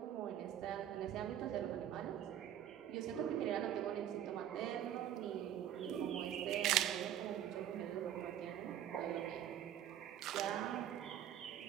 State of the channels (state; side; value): quieter; left; 10.8 dB